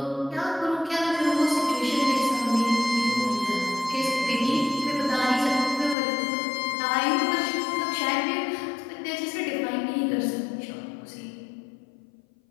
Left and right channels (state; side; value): drops out; right; at 6.0 s